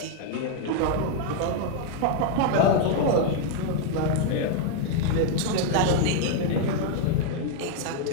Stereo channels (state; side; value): different; both; correlation 0.00